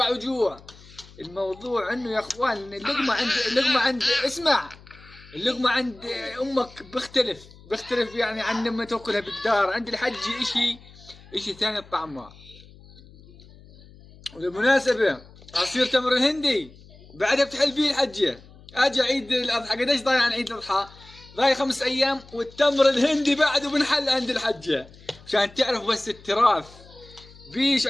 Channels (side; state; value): left; noise; hum, 22 dB below the sound